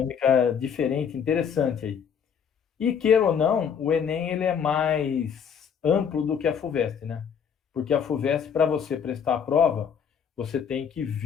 diferente, interessante aí. E queira ou não, o Enem ele é mais amplo do que a FUVEST, né? Porque a FUVEST, para você prestar a prova, você tem que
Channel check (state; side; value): quieter; right; 7.4 dB